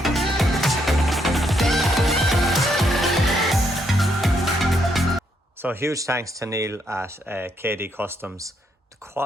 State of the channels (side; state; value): both; normal; correlation 0.75